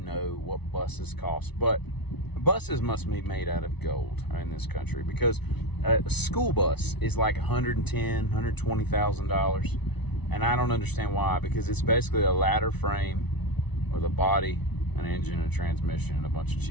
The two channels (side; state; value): right; late; 0.99 ms